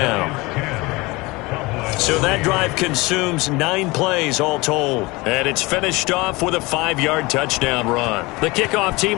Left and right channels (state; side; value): quieter; right; 23.3 dB